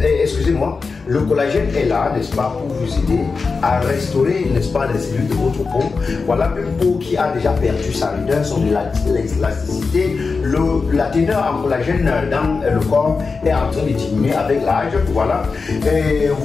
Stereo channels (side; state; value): right; quieter; 4.6 dB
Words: excusez-moi, le collagène est là, n'est-ce pas, pour vous aider à restaurer, n'est-ce pas, les cellules de votre peau. Voilà, une peau qui a déjà perdu sa rudeur, son élasticité, la teneur en collagène dans le corps est en train de diminuer avec l'âge. Voilà. Et